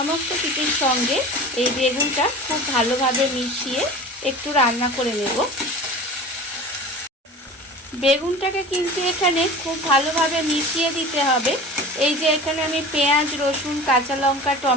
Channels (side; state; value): both; normal; correlation 0.37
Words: কিছুর সঙ্গে এই বেগুনটা খুব ভালোভাবে মিশিয়ে একটু রান্না করে নেব। বেগুনটাকে কিন্তু এখানে খুব ভালোভাবে মিশিয়ে দিতে হবে। এই যে এখানে আমি পেঁয়াজ, রসুন, কাঁচা লঙ্কা,